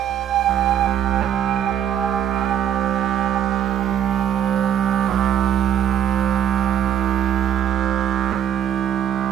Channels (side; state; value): left; quieter; 9.9 dB